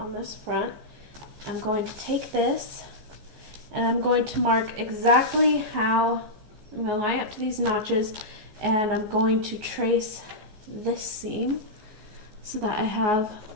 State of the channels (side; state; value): left; late; 14 ms